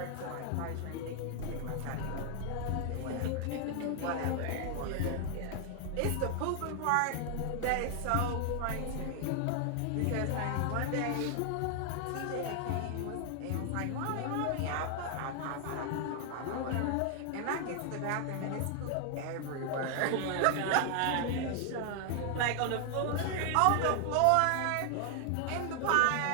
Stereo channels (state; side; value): different; both; correlation 0.00